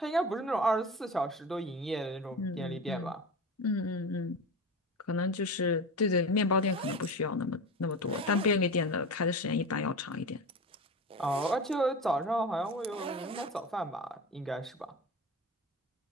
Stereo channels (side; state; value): both; normal; correlation 0.28